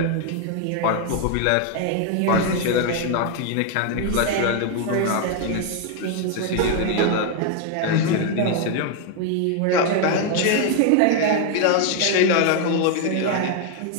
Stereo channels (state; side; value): different; both; correlation 0.01